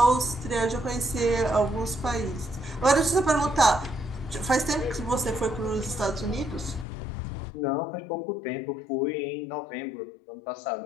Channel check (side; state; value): right; drops out; at 6.9 s